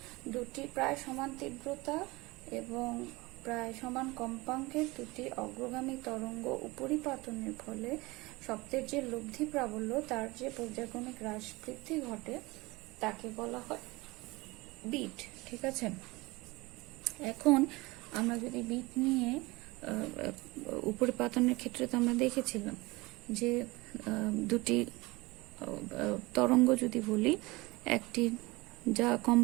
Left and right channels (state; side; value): quieter; left; 22.6 dB